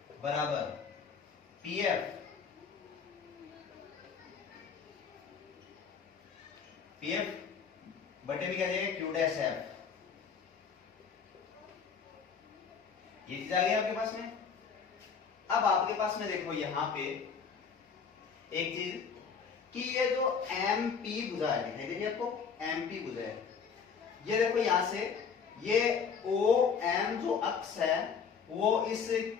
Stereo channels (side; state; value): right; quieter; 6.2 dB